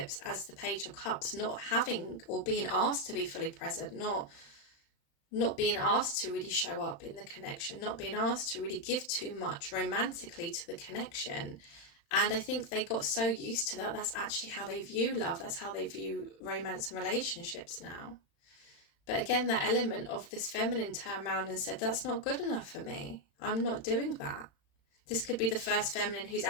as the Page of Cups, not having or being asked to be fully present, not being asked to really show up in the connection, not being asked to really give too much romantically to the connection. And I think they got so used to that, that's actually how they view love, that's how they view romance and relationships now. But again, that element of this feminine turned around and said, that's not good enough for me. I'm not doing that. This could be the first feminine who's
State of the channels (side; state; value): right; late; 36 ms